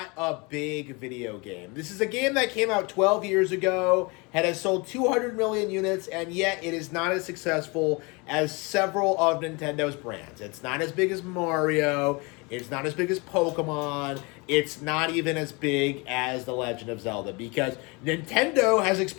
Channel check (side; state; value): right; quieter; 28.0 dB